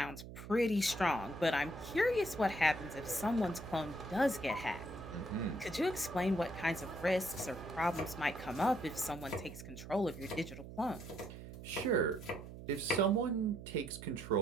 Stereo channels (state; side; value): noise; right; hum, 12 dB below the sound